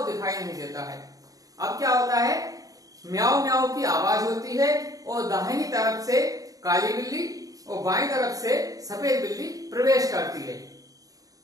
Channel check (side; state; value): left; late; 0.17 ms